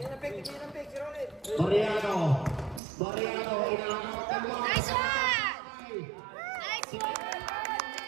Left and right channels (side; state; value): left; drops out; at 2.8 s